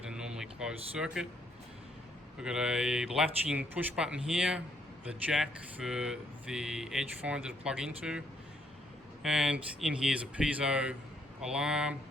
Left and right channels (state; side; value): normal; both; correlation 0.71